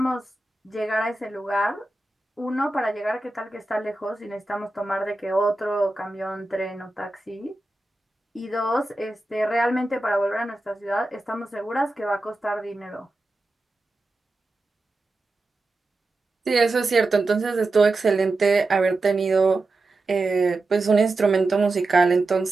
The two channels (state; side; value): quieter; left; 3.0 dB